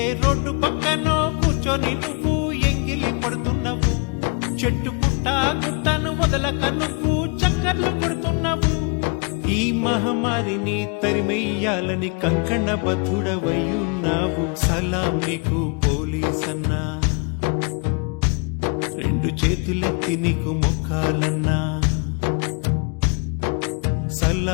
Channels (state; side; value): quieter; right; 33.4 dB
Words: రోడ్డు పక్కనో కూర్చొని నువ్వు ఎంగిలి పడుతున్నావు, చెట్టు పుట్ట గుట్టను వదలక నువ్వు చక్కర్లు కొడుతున్నావు. ఈ మహమ్మారిని తరిమెయ్యాలని కంకణబద్ధుడవయ్యున్నావు. సలాం నీకు పోలీసన్నా, రెండు చేతులెత్తి నీకు మొక్కాలన్నా.